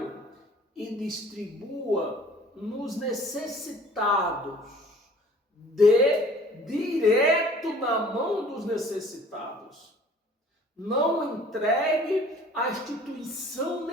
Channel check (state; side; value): normal; both; correlation 0.51